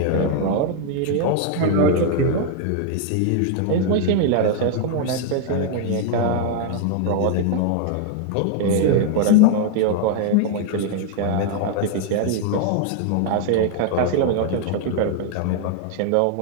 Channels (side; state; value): both; different; correlation 0.00